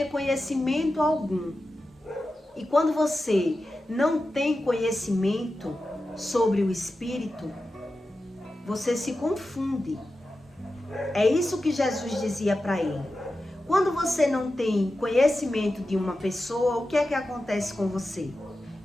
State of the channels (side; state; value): both; normal; correlation 0.92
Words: conhecimento algum. E quando você não tem conhecimento sobre o Espírito, você se confunde. É isso que Jesus dizia para ele. Quando você não tem conhecimento de uma pessoa, o que é que acontece com você?